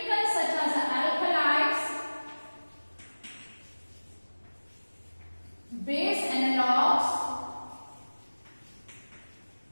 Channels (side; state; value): both; inverted; correlation -1.00